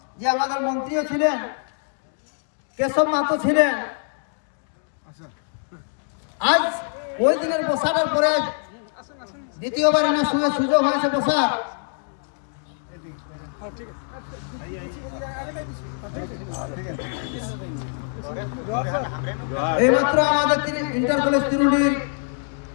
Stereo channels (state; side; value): silent; right; 63 dB below the other